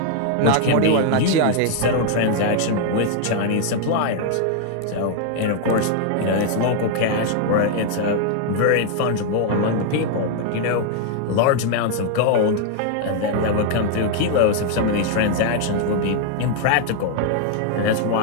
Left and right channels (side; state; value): both; different; correlation 0.00